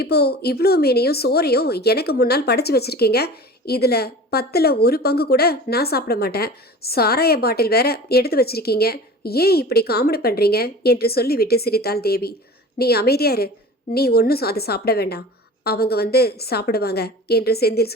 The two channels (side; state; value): both; normal; correlation 0.38